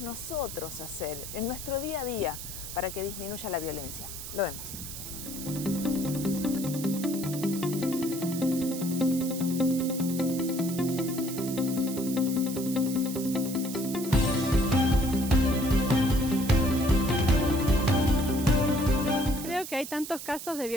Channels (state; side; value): noise; right; hiss, 9 dB below the sound